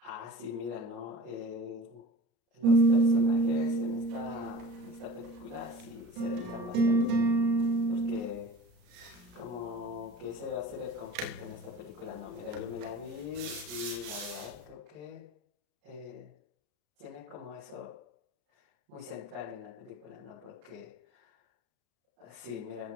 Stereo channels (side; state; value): left; late; 34 ms